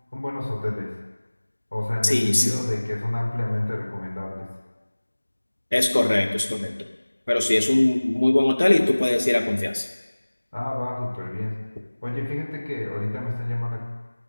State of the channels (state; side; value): inverted; both; correlation -1.00